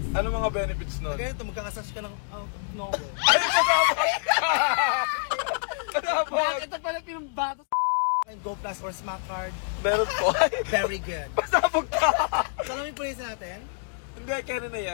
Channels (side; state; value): right; silent; digital silence